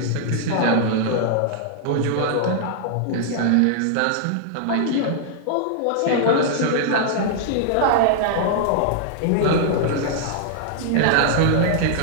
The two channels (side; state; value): both; different; correlation -0.01